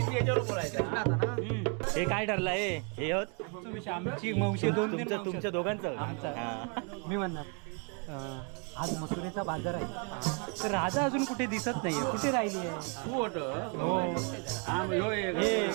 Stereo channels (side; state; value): left; quieter; 37.4 dB